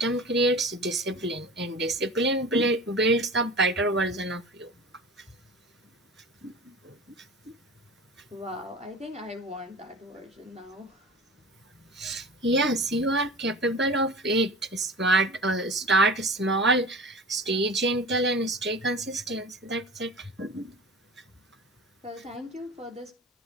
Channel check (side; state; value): both; normal; correlation 0.36